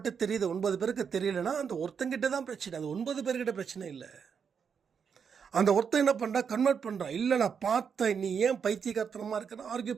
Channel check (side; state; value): left; quieter; 6.7 dB